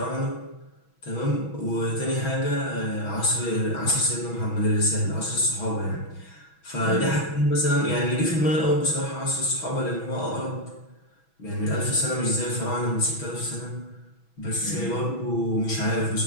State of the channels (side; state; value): right; late; 6.1 ms